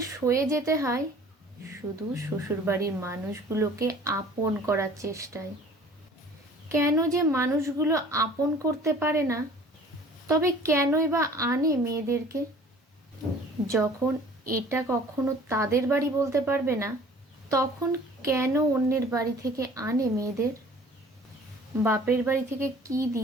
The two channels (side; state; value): both; normal; correlation 0.49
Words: সয়ে যেতে হয় শুধু শ্বশুরবাড়ির মানুষগুলোকে আপন করার চেষ্টায়। কেন যে মানুষগুলো আপন করতে পারে না, তবে কেনই বা আনে মেয়েদেরকে? যখন এটা কখনো তাদের বাড়ি বলতে পারবে না, তখন কেন অন্যের বাড়ি থেকে আনে মেয়েদের? বাপের বাড়ি থেকে কি